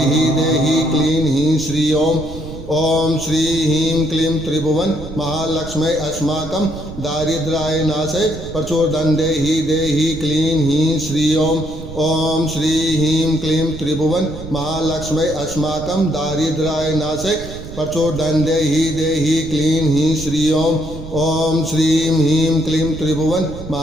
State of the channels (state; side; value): noise; right; rumble, 12 dB below the sound